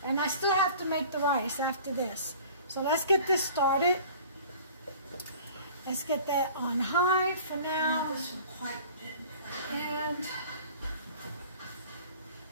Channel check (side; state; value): both; inverted; correlation -0.46